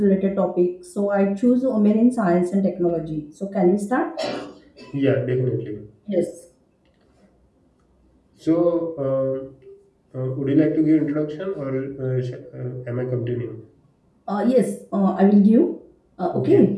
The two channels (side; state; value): both; identical; correlation 1.00